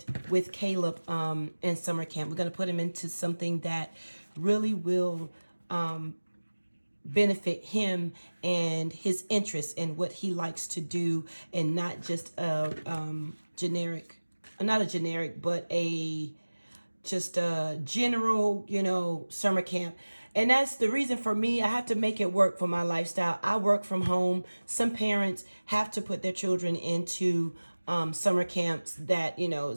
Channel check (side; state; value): both; inverted; correlation -1.00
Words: with Caleb in summer camp. We're going to put him into something that really will benefit him and his interests and what he likes to do, and not just a generic, not a generic, but just a general, summer camp. And that's the reason for me. I have to make it work for my lifestyle. I work from home. Some parents have to put their children into summer camps that,